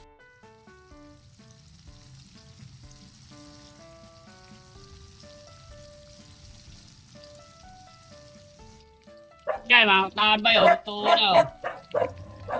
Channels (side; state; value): both; identical; correlation 1.00